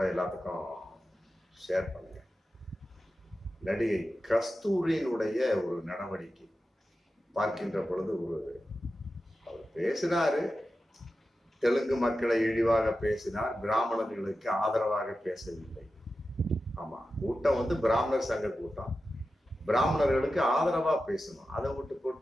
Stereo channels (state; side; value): normal; both; correlation 0.92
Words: எல்லாத்துக்கும் ஷேர் பண்ணுங்கள். நடிகை கஸ்தூரியினுடைய ஒரு நடவடிக்கை பார்க்கின்ற பொழுது அவர் பேசினாரு. தெலுங்கு மக்களை இழிவாக பேசினார், பிராமணர்களுக்கு ஆதரவாக பேசவில்லை. ஆமா, கூட்டம் பிராமணர் சங்க கூட்டம், பிராமணர்களுக்கு ஆதரவா பேசணும். அதை விட்டு